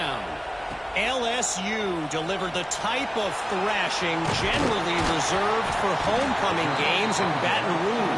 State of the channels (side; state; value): both; identical; correlation 1.00